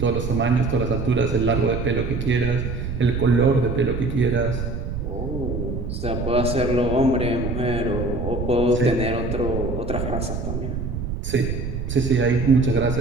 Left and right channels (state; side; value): noise; right; rumble, 4 dB below the sound